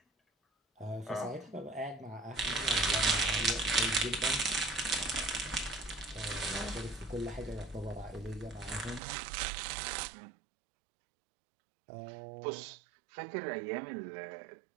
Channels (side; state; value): left; drops out; at 9.0 s